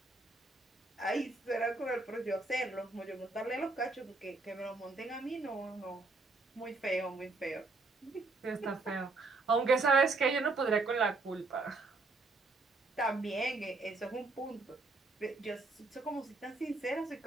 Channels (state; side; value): quieter; left; 3.5 dB